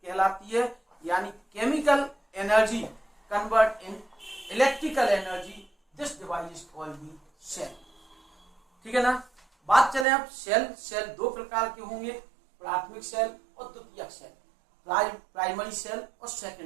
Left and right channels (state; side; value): drops out; left; at 10.1 s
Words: है। यानी chemical energy convert in electrical energy, this device is called the cell. ठीक है ना। बात चले अब सेल दो प्रकार के होंगे, प्राथमिक सेल और द्वितीयक सेल, प्राइमरी सेल और